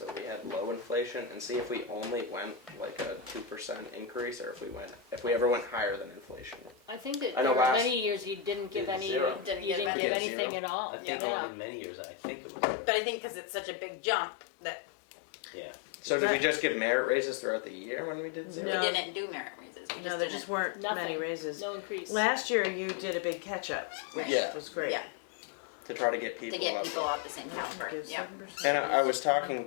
we had low inflation and see if we only went like a 2% increase, or if we ever went higher than inflation. I think that I know there were last- many years you didn't give Did any, zero. you Didn't didn't give give any. anything Zero. at all. I think Yeah. in many years, I think it was, But I think because it's such a big jump that yeah. So did we just give merit raises throughout the year when we did zero? No. we didn't do merit raises. We No, there didn't. just weren't many Nothing. raises. No increase. Last year you did a big catch up, which Yeah. was great. Yeah, To try to get people to get up. people at the same Motion to caliber, give yeah. 7% And I was raise talking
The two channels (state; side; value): drops out; right; at 9.9 s